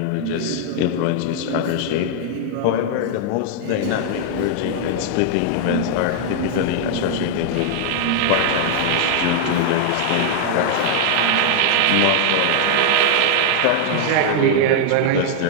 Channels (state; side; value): different; both; correlation 0.00